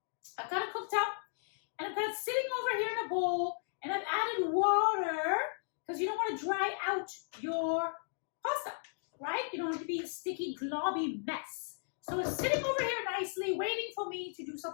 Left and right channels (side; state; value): right; silent; digital silence